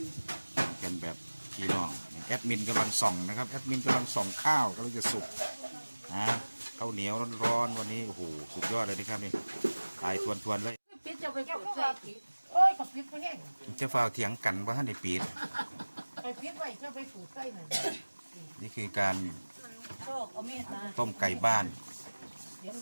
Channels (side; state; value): both; inverted; correlation -1.00